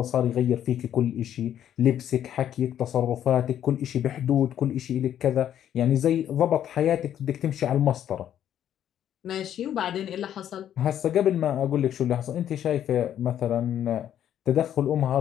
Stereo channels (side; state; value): right; quieter; 10.4 dB